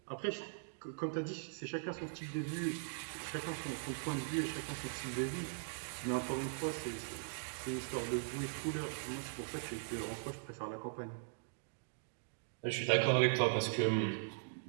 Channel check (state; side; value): silent; left; digital silence